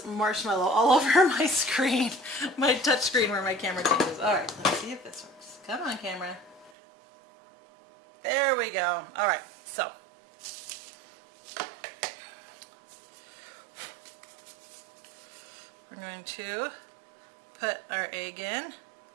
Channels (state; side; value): drops out; left; at 6.7 s